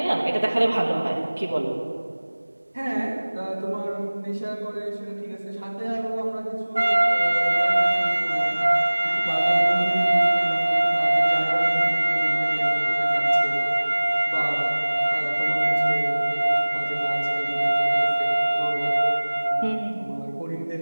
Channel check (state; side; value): inverted; both; correlation -1.00